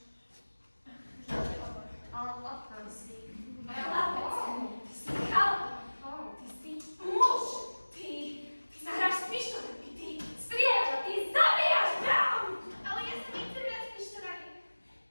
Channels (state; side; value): inverted; both; correlation -1.00